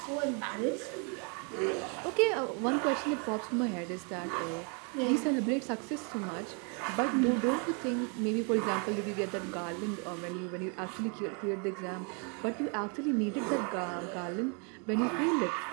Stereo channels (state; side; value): quieter; left; 37.2 dB